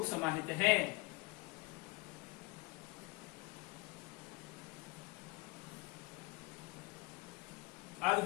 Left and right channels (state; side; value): quieter; right; 24.3 dB